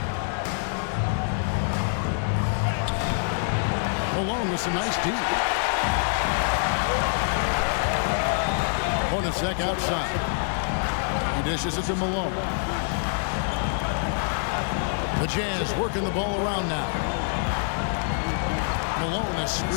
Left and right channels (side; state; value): right; silent; digital silence